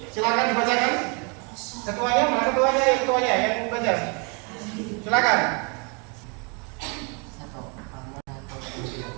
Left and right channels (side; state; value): left; quieter; 34.1 dB